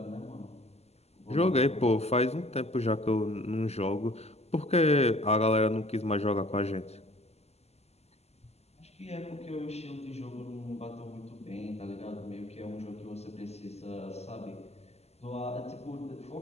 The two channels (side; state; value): right; late; 0.30 ms